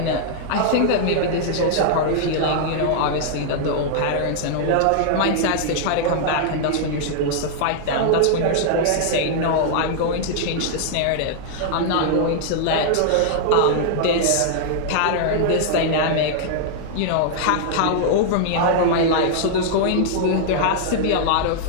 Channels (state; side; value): different; both; correlation -0.01